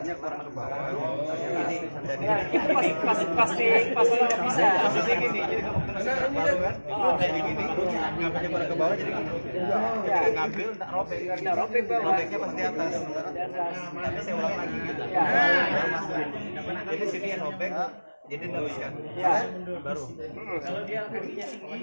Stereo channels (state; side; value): inverted; both; correlation -1.00